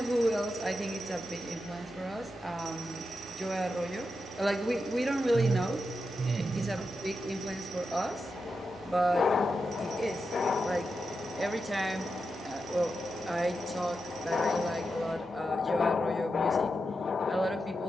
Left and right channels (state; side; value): normal; both; correlation 0.88